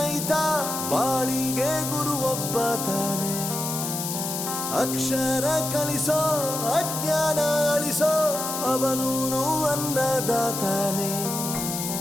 ಬಾಳಿಗೆ ಗುರು ಒಬ್ಬ ತಾನೆ. ಅಕ್ಷರ ಕಲಿಸೋ, ಅಜ್ಞಾನ ಅಳಿಸೋ, ಅವನೂನು ಅನ್ನದಾತಾನೆ.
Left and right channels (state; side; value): noise; left; hiss, 4 dB below the sound